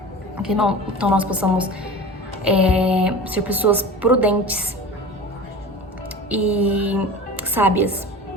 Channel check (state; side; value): normal; both; correlation 0.34